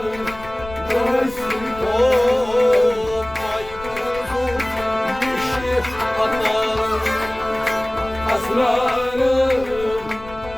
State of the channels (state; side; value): noise; left; rumble, 16 dB below the sound